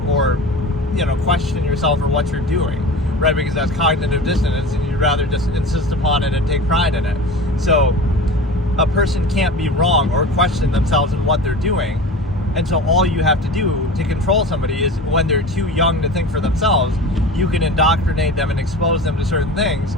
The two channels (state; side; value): normal; both; correlation 0.34